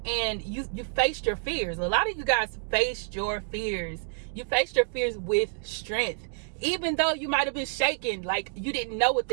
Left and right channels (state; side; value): silent; left; digital silence